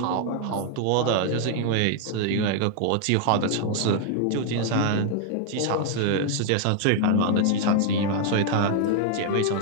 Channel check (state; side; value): different; both; correlation 0.00